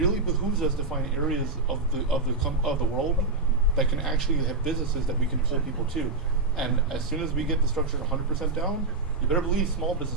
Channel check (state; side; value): quieter; left; 3.5 dB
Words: behooves us to find areas of the world that can actually have businesses that we can pull people to. And as soon as we get the structure 100% down, you better believe small